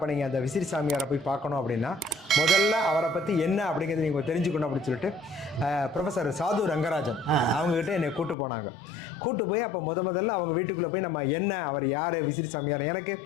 நீங்கள் அந்த விசிறி சாமியாரை போய் பார்க்கணும் அப்படின்னா முதல்ல அவரை பற்றி என்ன அப்படிங்கிறது நீங்கள் தெரிஞ்சுக்கணும் அப்படின்னு சொல்லிட்டு ப்ரொஃபஸர் சாது ரங்கராஜன் அவங்ககிட்ட என்னை கூட்டு போய் அப்போ முதல்ல அவங்க வீட்டுக்குள்ளே போய் நம்ம என்ன, அவர் யார், விசிறி சாமியார். எனக்கு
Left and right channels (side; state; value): right; drops out; at 8.3 s